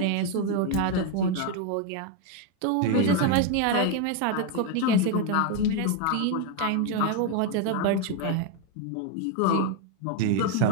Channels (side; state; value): both; different; correlation 0.01